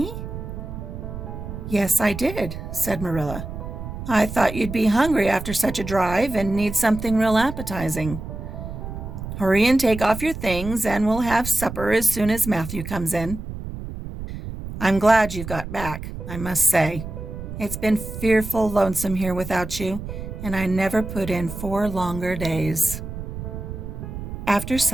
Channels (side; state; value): right; noise; rumble, 8 dB below the sound